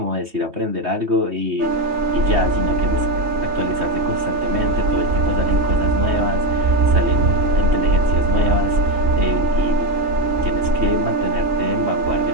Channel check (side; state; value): left; late; 3.2 ms